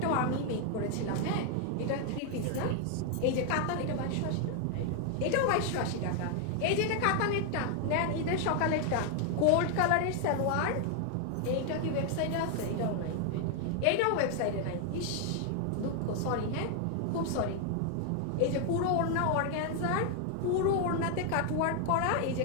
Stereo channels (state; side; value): different; both; correlation 0.00